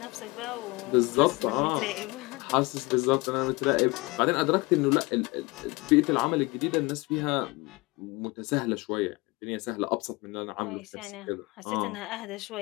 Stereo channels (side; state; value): right; quieter; 24.7 dB